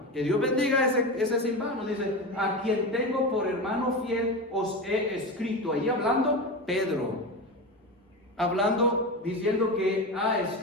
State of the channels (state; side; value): normal; both; correlation 0.22